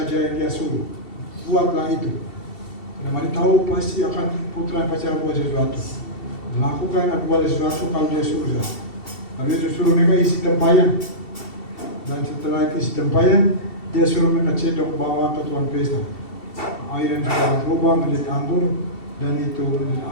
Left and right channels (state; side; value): late; right; 2.7 ms